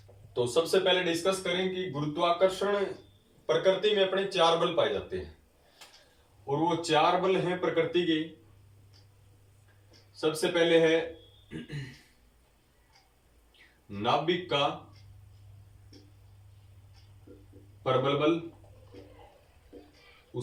तो सबसे पहले डिस्कस करें कि गुरुत्वाकर्षण प्रकृति में अपने 4 बल पाए जाते हैं और वो 4 बल हैं प्रकृति के। सबसे पहले है नाभिक का प्रबल बल,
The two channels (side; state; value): both; identical; correlation 1.00